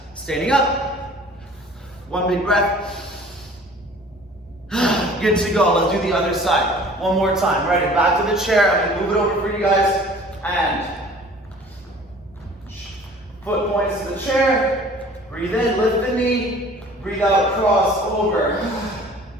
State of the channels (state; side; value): normal; both; correlation 0.48